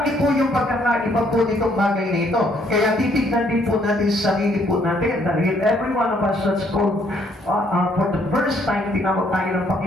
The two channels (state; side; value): normal; both; correlation 0.67